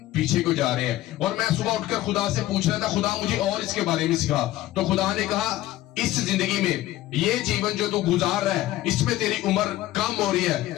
पीछे को जा रहे हैं। और मैं सुबह उठकर खुदा से पूछ रहा था, खुदा मुझे और इसके बारे में सिखा। तो खुदा ने कहा इस जिंदगी में ये जीवन जो तू गुजार रहा है इसमें तेरी उम्र कम हो रही है,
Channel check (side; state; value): right; quieter; 15.5 dB